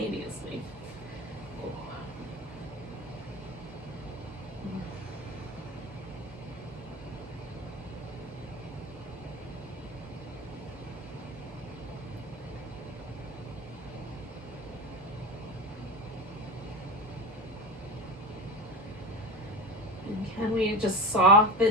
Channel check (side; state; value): both; normal; correlation 0.25